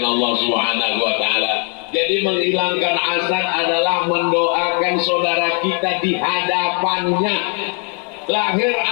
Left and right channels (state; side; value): quieter; right; 36.8 dB